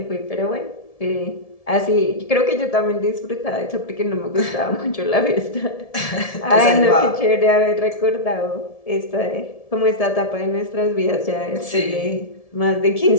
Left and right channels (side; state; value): right; late; 1.7 ms